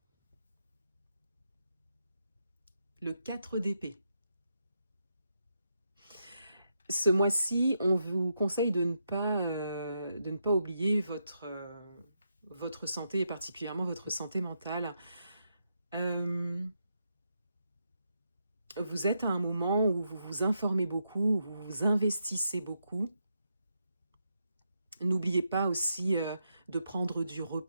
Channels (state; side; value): inverted; both; correlation -0.82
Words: le 4 d'épée. Ce mois-ci, on vous conseille de ne pas oublier votre santé et particulièrement votre santé mentale. Vous êtes à un moment où vous vous informez beaucoup, où vous vous investissez beaucoup. N'oubliez pas aussi de prendre du